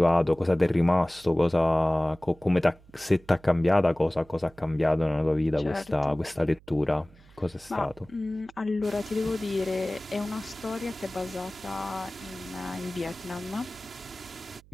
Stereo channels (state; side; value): noise; right; hum, 26 dB below the sound